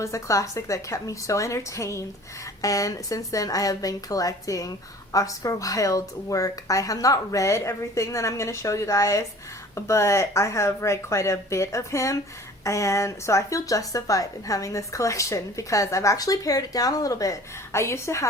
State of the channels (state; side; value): normal; both; correlation 0.46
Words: a classic that kept me so entertained, and since then I have been collecting Oscar Wilde's work. I have not read everything that I'm going to show you guys, but I have read quite a bit of him, and so I feel justified in having this collection because I've actually pared it down a little bit. I used to